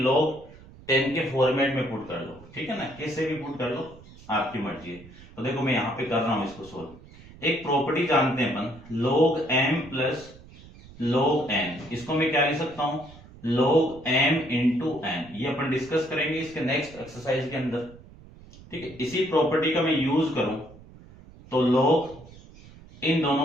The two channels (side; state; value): right; noise; rumble, 21 dB below the sound